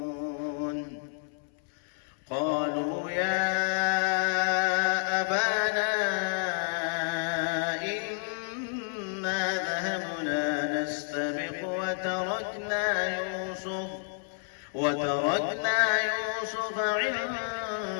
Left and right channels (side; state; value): right; silent; 58 dB below the other